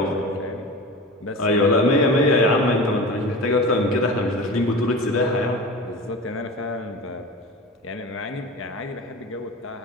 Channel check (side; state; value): both; normal; correlation 0.32